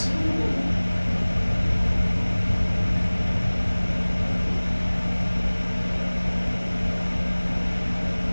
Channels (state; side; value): inverted; both; correlation -1.00